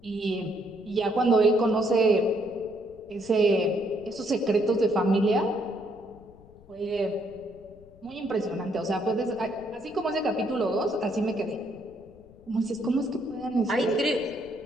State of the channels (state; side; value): noise; left; rumble, 24 dB below the sound